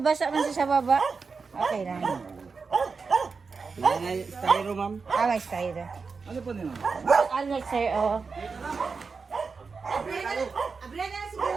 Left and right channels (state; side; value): quieter; left; 4.9 dB